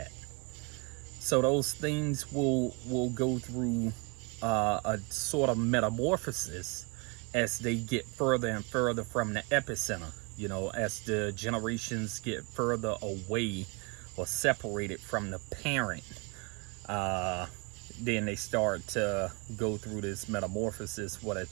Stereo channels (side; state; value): left; quieter; 31.2 dB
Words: So those things will go through a sort of metamorphosis as they get further and further from the epicenter. As the generations get further away or separated from the parent, then they start to go through this metamorphosis where they're